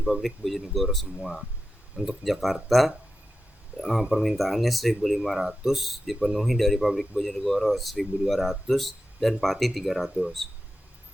pabrik Bojonegoro semua. Untuk Jakarta permintaannya 1.500 dipenuhi dari pabrik Bojonegoro 1.200 dan Pati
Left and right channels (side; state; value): both; normal; correlation 0.91